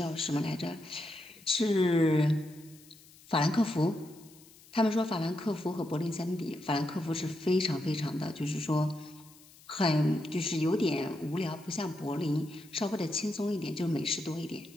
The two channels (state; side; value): noise; left; hiss, 24 dB below the sound